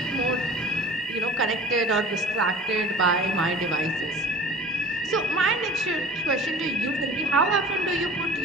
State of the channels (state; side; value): normal; both; correlation 0.41